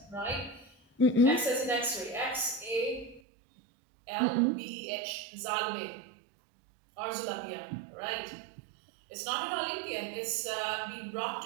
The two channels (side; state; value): left; drops out; at 3.2 s